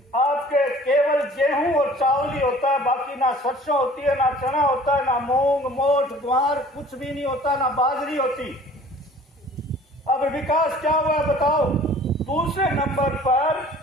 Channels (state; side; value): normal; both; correlation 0.49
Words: आपके केवल गेहूं और चावल ही होता है, बाकी ना सरसों होती है, ना चना होता है, ना मूंग मोठ ग्वार कुछ भी नहीं होता, ना बाजरी होती। अब विकास क्या हुआ बताओ। दूसरे नंबर पर